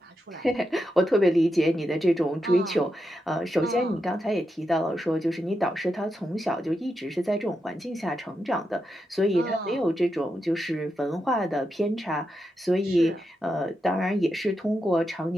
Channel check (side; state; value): both; normal; correlation 0.86